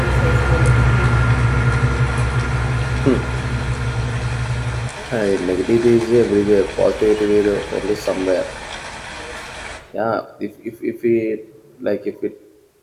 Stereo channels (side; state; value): both; identical; correlation 1.00